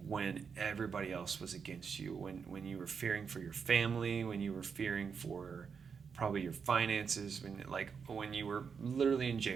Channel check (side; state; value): left; quieter; 6.1 dB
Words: everybody else was against you, when you were fearing for your family, when you were fearing for probably your finances, when you were literally in